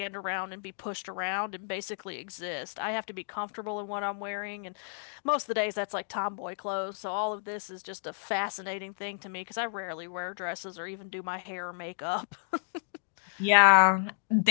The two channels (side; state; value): right; silent; digital silence